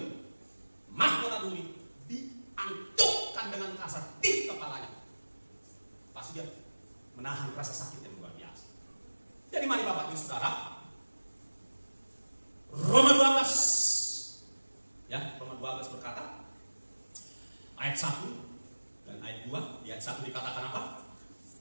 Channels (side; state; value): both; inverted; correlation -1.00